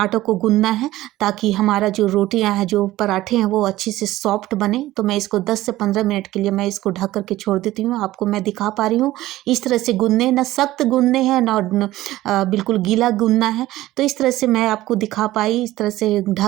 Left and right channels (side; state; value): left; quieter; 16.1 dB